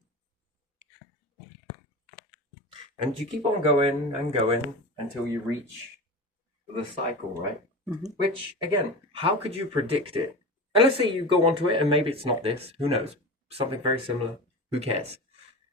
And you keep on going and going until you reach the cycle, right? Which, again, how could you predict it? And let's say you go onto it and maybe it's not this. Who knows? Something very similar. Who cares?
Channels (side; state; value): both; normal; correlation 0.28